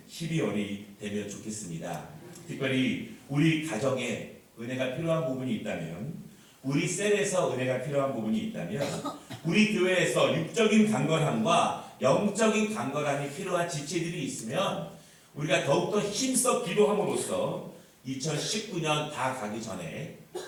12월이 되면 좋겠습니다. 특별히 우리 가정에 은혜가 필요한 부분이 있다면 우리 셀에서 은혜가 필요한 부분이 있다면 우리 교회에서 육적인 강건함과 영적인 강건함이 필요한 지체들이 있으면 우리가 더욱더 힘써 기도함으로써 2019년 다 가기 전에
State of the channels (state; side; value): identical; both; correlation 1.00